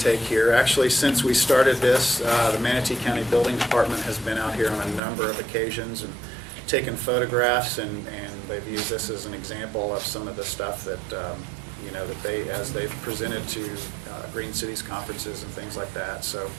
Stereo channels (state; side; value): drops out; left; at 5.0 s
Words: here. Actually, since we started this, the Manatee County Building Department has been out here on a number of occasions and taken photographs, and they've used this as an example of some of the stuff that as they've presented to Green Cities conferences and things like that. So